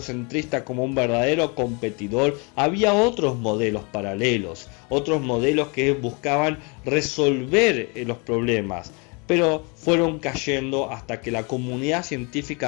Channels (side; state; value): right; quieter; 31.8 dB